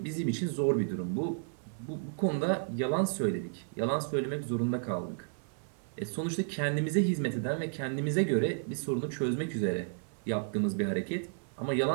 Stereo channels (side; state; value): left; silent; 56 dB below the other